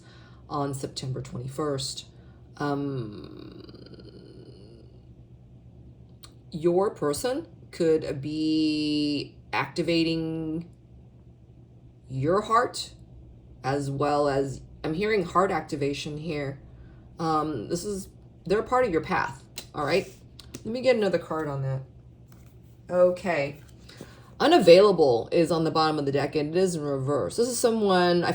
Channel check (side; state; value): both; identical; correlation 1.00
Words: on September 21st. Your person could be activating your heart, as well as, I'm hearing heart activation here. They're a part of your path, all right? Let me get another card on that. Okay. Unavailable is on the bottom of the deck, and it is in reverse. This is someone I